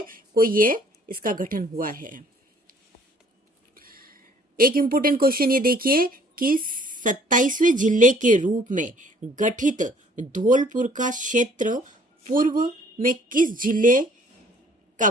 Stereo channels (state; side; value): normal; both; correlation 0.58